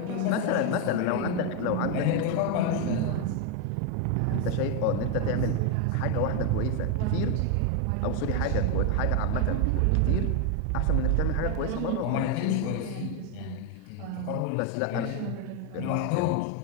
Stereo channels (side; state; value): both; different; correlation 0.01